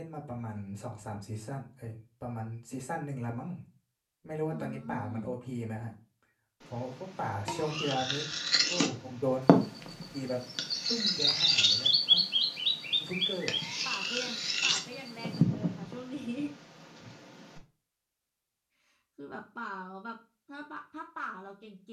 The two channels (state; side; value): identical; both; correlation 1.00